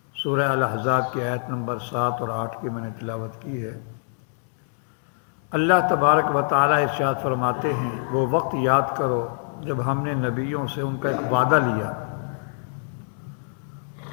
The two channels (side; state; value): right; silent; digital silence